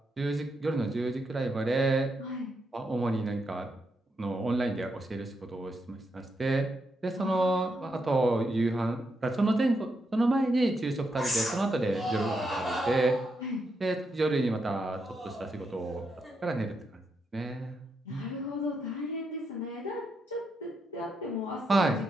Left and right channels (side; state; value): both; normal; correlation 0.82